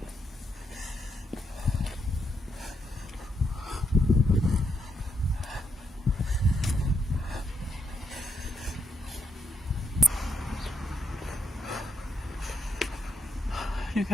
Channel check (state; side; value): normal; both; correlation 0.79